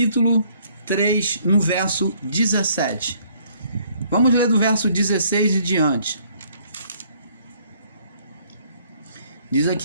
3, no verso 17. Vamos ler do verso 16 e diante. Diz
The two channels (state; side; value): inverted; both; correlation -0.63